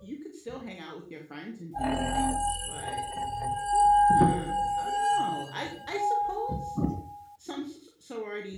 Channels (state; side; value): identical; both; correlation 1.00